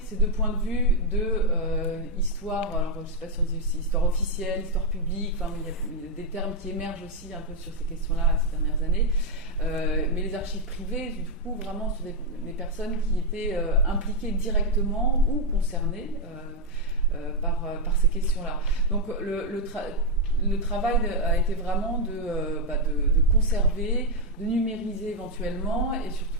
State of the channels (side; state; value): both; normal; correlation 0.01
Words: ces deux points de vue de histoire, alors je ne sais pas si on dit aussi histoire officielle, histoire publique, enfin, il y a des termes qui émergent aussi un peu sur ces questions-là ces dernières années. Mais les archives privées, du coup, vraiment sur des personnes qui étaient impliquées directement ou concernées par ces questions-là. Donc le travail a été vraiment de conserver, de numériser éventuellement et